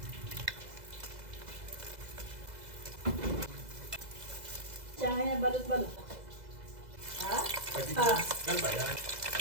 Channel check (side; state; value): left; late; 2.0 ms